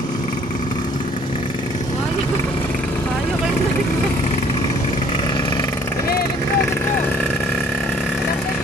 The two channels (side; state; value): both; normal; correlation 0.59